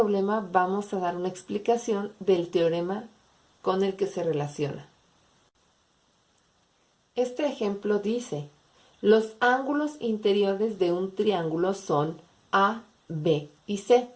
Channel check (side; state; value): both; identical; correlation 1.00